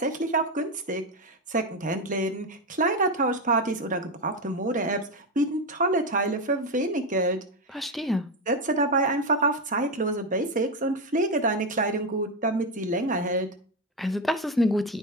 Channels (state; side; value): normal; both; correlation 0.11